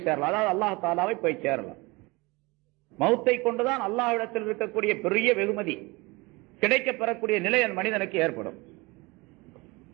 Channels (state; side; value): quieter; left; 24.7 dB